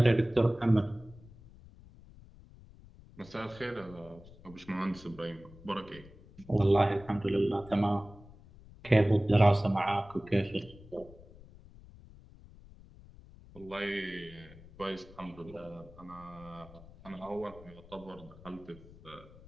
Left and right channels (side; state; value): left; noise; rumble, 21 dB below the sound